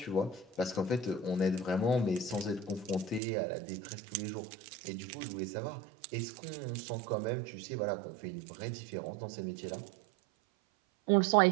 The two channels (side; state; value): left; drops out; at 3.2 s